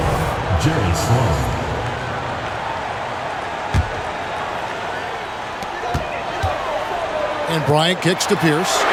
Jerry Sloan. And Bryant kicks to Pierce.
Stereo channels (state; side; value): identical; both; correlation 1.00